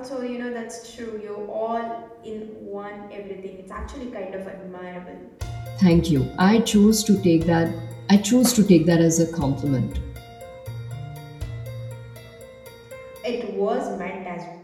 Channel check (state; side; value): identical; both; correlation 1.00